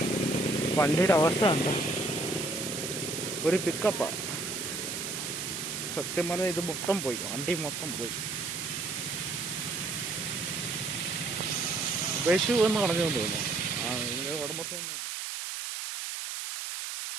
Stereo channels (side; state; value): right; noise; hiss, 5 dB below the sound